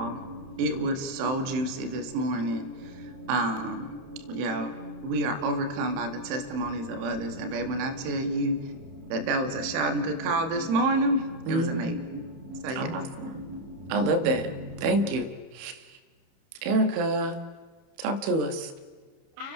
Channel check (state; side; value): late; left; 31 ms